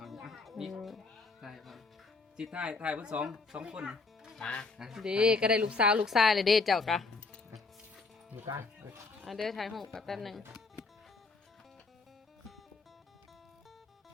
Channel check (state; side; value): quieter; right; 4.1 dB